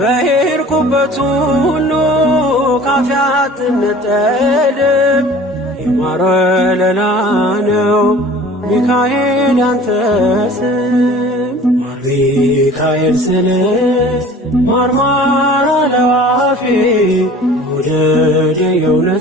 ሁሉ ካፌ አትነጠልም የማር ወለላ ነው ሚካኤል ያንተ ስም ማር ሚካኤል ስል ማርማር አለው አፌ መውደድ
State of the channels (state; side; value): normal; both; correlation 0.45